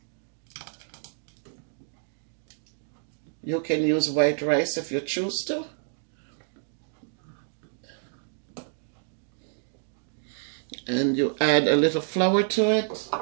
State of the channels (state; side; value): silent; left; digital silence